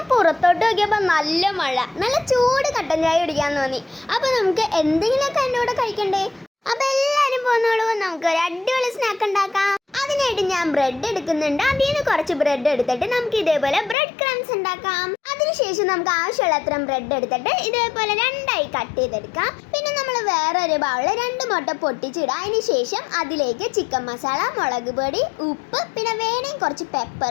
പുറത്തോട്ട് നോക്കിയപ്പോൾ നല്ല മഴ, നല്ല ചൂട് കട്ടൻ ചായ കുടിക്കാൻ തോന്നി. അപ്പോൾ നമുക്ക് എന്തെങ്കിലുമൊക്കെ എൻ്റെ കൂടെ കഴിക്കണ്ടേ? അപ്പോൾ എല്ലാവരും പോന്നോളൂ, നമുക്ക് ഒരു അടിപൊളി സ്നാക്ക് ഉണ്ടാക്കാം. അതിനായിട്ട് ഞാൻ ബ്രെഡ് എടുക്കുന്നുണ്ട്. അതിൽ നിന്ന് കുറച്ച് ബ്രെഡ് എടുത്തിട്ട് നമുക്ക് ഇതേപോലെ ബ്രെഡ് ക്രംസ് ഉണ്ടാക്കാം. അതിനുശേഷം നമുക്ക് ആവശ്യമുള്ള അത്രയും ബ്രെഡ് എടുത്തിട്ട് ഇതേപോലെ രണ്ടായി കട്ട് ചെയ്തെടുക്കാം. പിന്നെ നമ്മൾ വേറൊരു ബൗളിൽ 2 മുട്ട പൊട്ടിച്ചിടുക. അതിനുശേഷം അതിലേക്ക് ചിക്കൻ മസാല, മുളക് പൊടി, ഉപ്പ്, പിന്നെ വേണമെങ്കിൽ കുറച്ച്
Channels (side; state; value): right; drops out; at 14.0 s